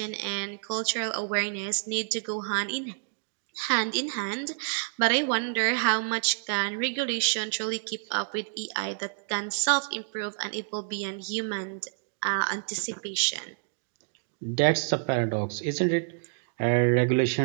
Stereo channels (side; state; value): left; silent; 59 dB below the other